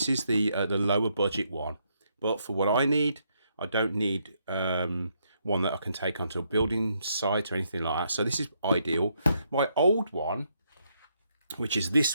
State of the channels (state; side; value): inverted; both; correlation -0.76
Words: is the lower budget one, but for what I need, I don't need one that I can take onto a building site or anything like that. So this is ideal. My old one, which is